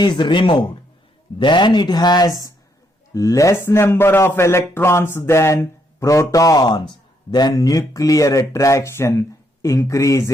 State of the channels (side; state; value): both; normal; correlation 0.74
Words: removed, then it has less number of electrons than protons. Then nuclear attraction